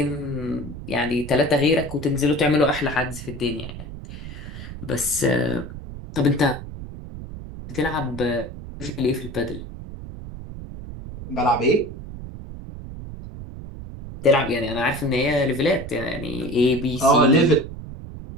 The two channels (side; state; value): right; noise; rumble, 11 dB below the sound